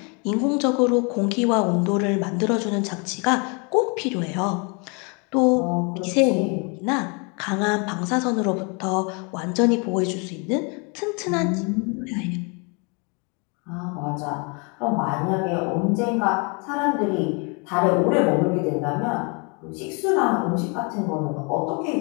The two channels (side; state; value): right; quieter; 33.3 dB